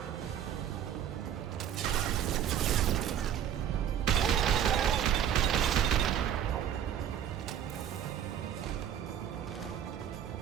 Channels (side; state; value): left; quieter; 9.7 dB